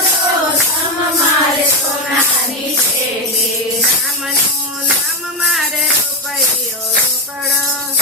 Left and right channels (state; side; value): normal; both; correlation 0.10